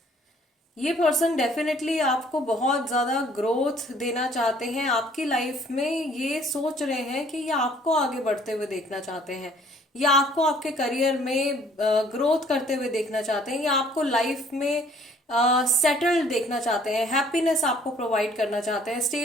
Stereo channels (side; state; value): both; normal; correlation 0.59